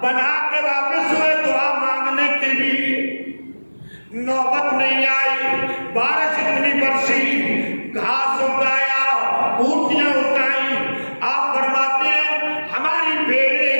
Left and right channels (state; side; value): inverted; both; correlation -1.00